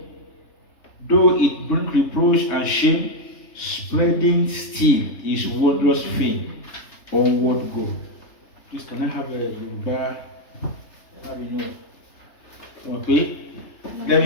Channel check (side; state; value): right; late; 3.3 ms